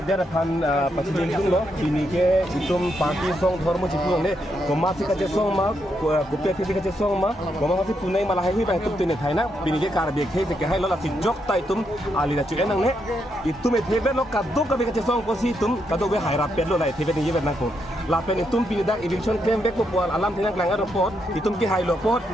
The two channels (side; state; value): both; normal; correlation 0.80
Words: pan pasti itu loh bini ke itu parti song hormo cikung deh komasi kaca song mah kopi kaca song mah komasi punai malah hehi bah itu tuh thai nak bini ke karbi ke hai lo lah si jok ta itu ali dah cuci nang ne itu me thebe lo kado kabi kaca song posi itu kado be hai rapet lo lah thebe ni be nang ko lapen itu bini dak eviction claim be ko pual alam tinang kelangar report itu ke hai lo pot